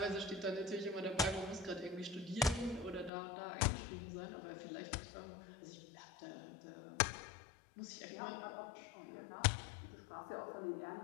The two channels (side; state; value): right; drops out; at 3.1 s